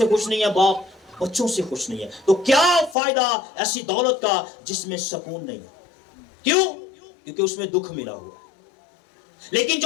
खुश नहीं है, बाप बच्चों से खुश नहीं है। तो क्या फायदा ऐसी दौलत का जिसमें सुकून नहीं है? क्यों? क्योंकि उसमें दुख मिला हुआ है। लेकिन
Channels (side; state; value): right; drops out; at 3.0 s